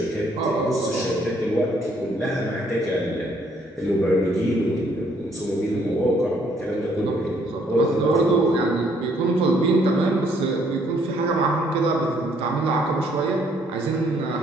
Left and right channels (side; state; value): both; normal; correlation 0.66